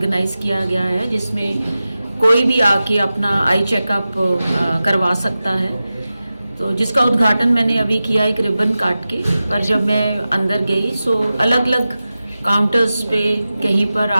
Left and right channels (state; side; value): inverted; both; correlation -0.94